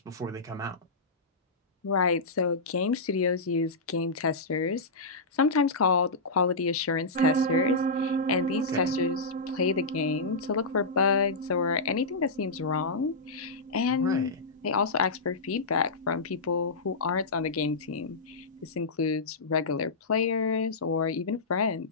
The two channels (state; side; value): quieter; right; 3.3 dB